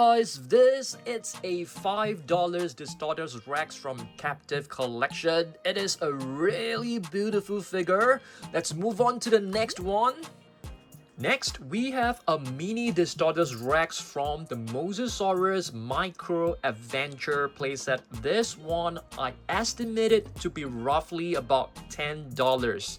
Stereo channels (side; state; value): both; identical; correlation 1.00